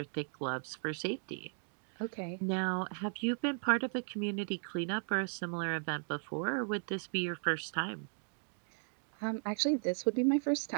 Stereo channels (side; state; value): left; silent; 54 dB below the other